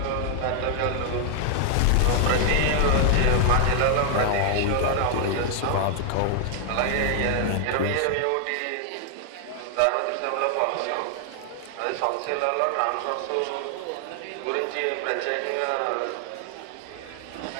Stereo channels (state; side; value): different; both; correlation 0.00